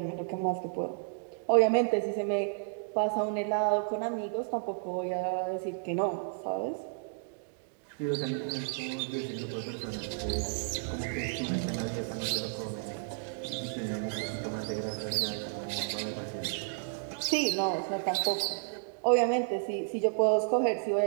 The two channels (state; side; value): silent; left; digital silence